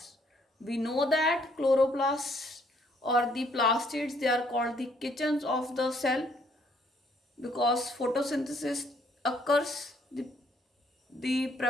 We know that chloroplasts or the plastids, they are called the kitchens of the cell because photosynthesis occurs, the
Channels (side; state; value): both; normal; correlation 0.66